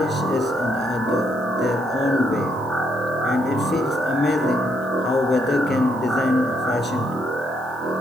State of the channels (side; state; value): left; noise; hiss, 27 dB below the sound